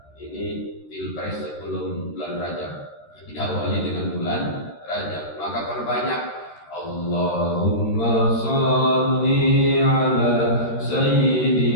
ini pilpres sebelum bulan Rajab, diawali dengan bulan Rajab. Maka perbanyak Allahumma shalli ala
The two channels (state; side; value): late; right; 13 ms